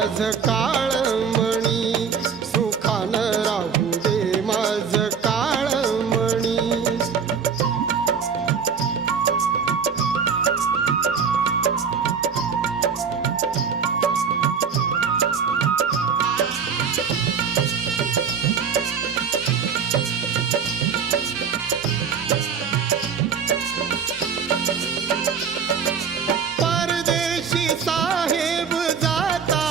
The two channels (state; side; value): quieter; left; 6.5 dB